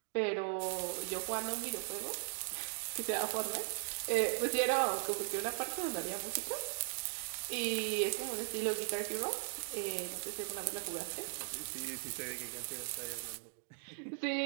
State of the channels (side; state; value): left; silent; 52 dB below the other